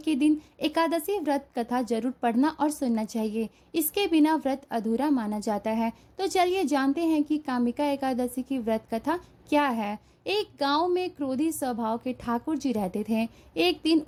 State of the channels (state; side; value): identical; both; correlation 1.00